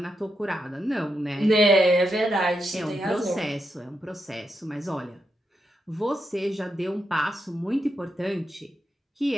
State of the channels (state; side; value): normal; both; correlation 0.84